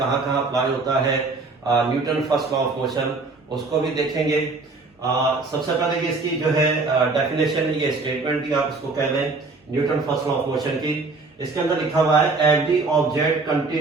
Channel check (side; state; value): left; quieter; 3.8 dB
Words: कहाँ अप्लाई होता है Newton first law of motion, उसको भी देखेंगे। सबसे पहले इसकी जो है डेफिनेशन, ये स्टेटमेंट भी आप इसको कह लें Newton first law of motion की। इसके अंदर लिखा हुआ है every object